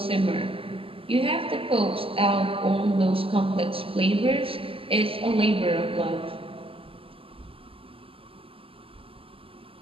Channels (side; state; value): left; late; 0.26 ms